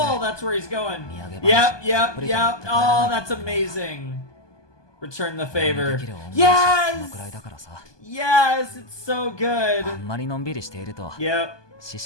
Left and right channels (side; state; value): right; late; 1.2 ms